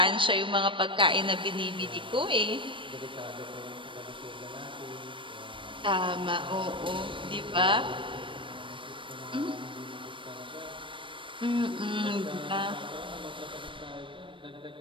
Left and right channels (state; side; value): late; left; 0.25 ms